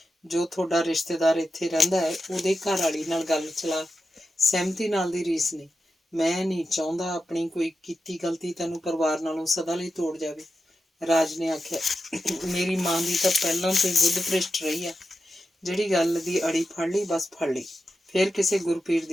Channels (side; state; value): both; normal; correlation 0.90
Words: ਜੋ ਤੁਹਾਡਾ ਰਿਸ਼ਤੇਦਾਰ ਇੱਥੇ ਰਹਿੰਦਾ ਹੈ ਉਹਦੇ ਘਰ ਵਾਲੀ ਨਾਲ ਗੱਲ ਚਲਾ। ਸਹਿਮਤੀ ਨਾਲ ਦੀ ਰੀਸ ਨਹੀਂ। ਮੈਂ ਨਹੀਂ ਚਾਹੁੰਦਾ ਆਪਣੀ ਕੋਈ ਕੀਤੀ ਗਲਤੀ ਤੈਨੂੰ ਪਰਿਵਾਰ ਨਾਲੋਂ ਸਦਾ ਲਈ ਤੋੜ ਜਾਵੇ। ਰਾਜ ਨੇ ਆਖਿਆ, ਮੇਰੀ ਮਾਂ ਦੀ ਤਾਂ ਪਹਿਲਾਂ ਤੋਂ ਹੀ ਬੁੱਧ ਭ੍ਰਿਸ਼ਟ ਰਹੀ ਆ। ਜਿਹੜੀ ਗੱਲ ਦੀ ਅੜੀ ਫੜ ਲਈ ਬਸ ਫੜ ਲਈ, ਫਿਰ ਕਿਸੇ ਗੁਰਪੀਰ